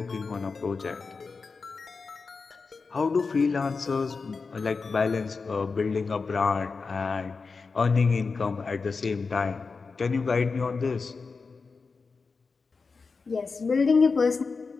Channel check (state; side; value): quieter; right; 4.6 dB